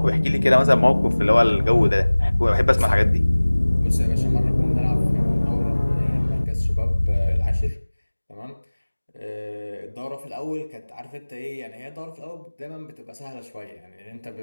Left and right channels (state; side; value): inverted; both; correlation -1.00